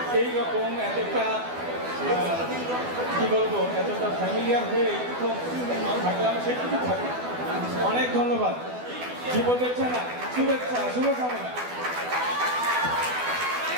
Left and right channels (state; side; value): late; left; 12 ms